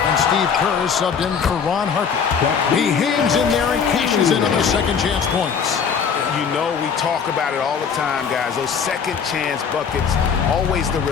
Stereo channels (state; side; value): quieter; right; 6.6 dB